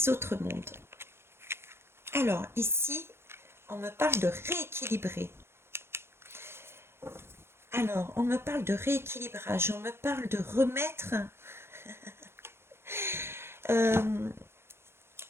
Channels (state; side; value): late; left; 0.12 ms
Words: mondes. Alors ici, on me parle de rééquilibrer. Alors, on me parle de rééquilibrage, on me parle de remettre